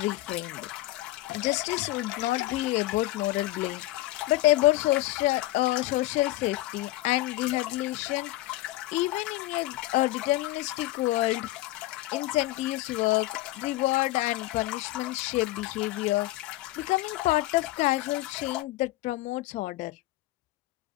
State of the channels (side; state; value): right; quieter; 17.3 dB